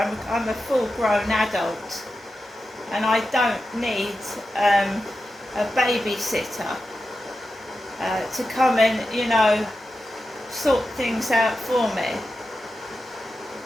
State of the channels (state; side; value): normal; both; correlation 0.91